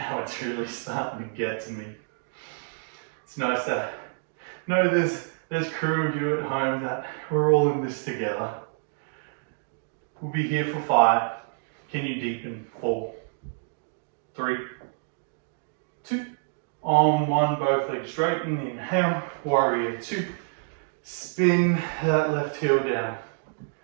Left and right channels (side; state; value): left; silent; digital silence